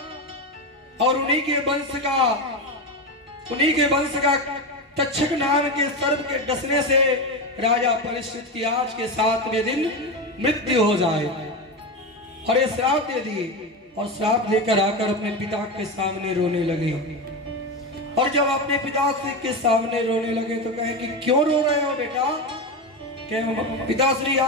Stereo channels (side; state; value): both; normal; correlation 0.17